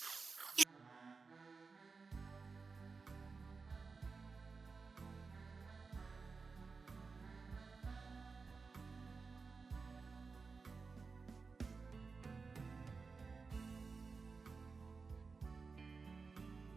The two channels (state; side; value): quieter; left; 4.6 dB